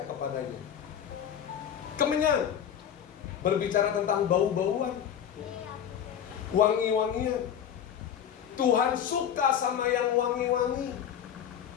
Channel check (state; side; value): quieter; right; 9.1 dB